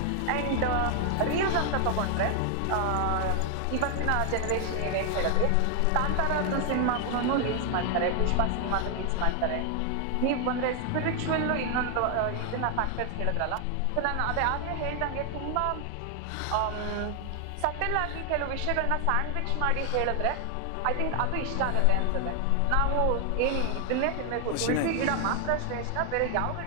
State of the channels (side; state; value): both; different; correlation 0.00